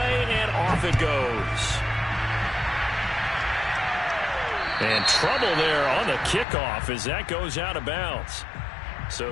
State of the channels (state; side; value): drops out; right; at 6.5 s